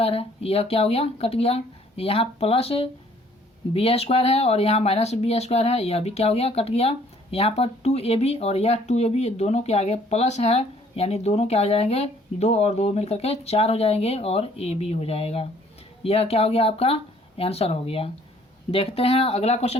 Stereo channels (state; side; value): normal; both; correlation 0.60